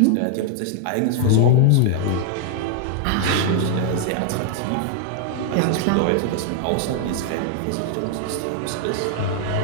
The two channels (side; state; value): both; different; correlation 0.00